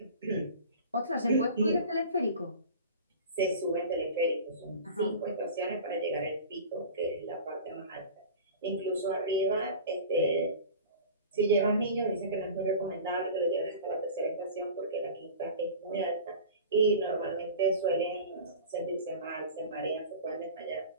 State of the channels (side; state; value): both; inverted; correlation -0.37